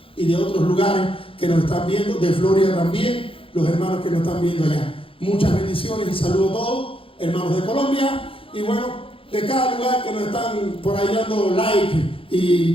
y de otros lugares que nos están viendo, de Florida también, los hermanos que nos están viendo allá. Muchas bendiciones y saludo a todos, hermanos de Colombia, y bueno, de cada lugar que nos están por ahí dando like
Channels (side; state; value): right; late; 0.26 ms